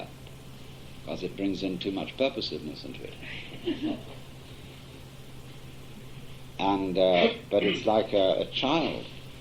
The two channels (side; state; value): both; identical; correlation 1.00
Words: because it brings in too much purposiveness into it. And but it's like a child